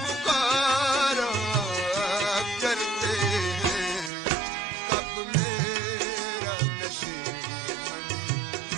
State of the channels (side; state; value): left; drops out; at 4.1 s